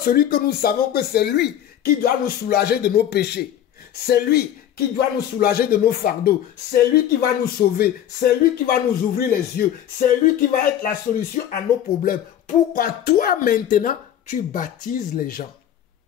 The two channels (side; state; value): right; quieter; 10.6 dB